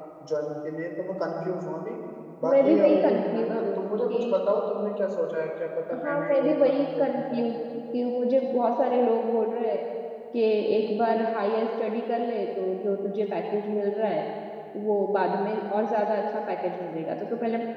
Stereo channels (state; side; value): identical; both; correlation 1.00